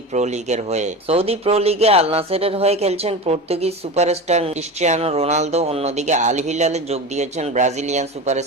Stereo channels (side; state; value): both; normal; correlation 0.27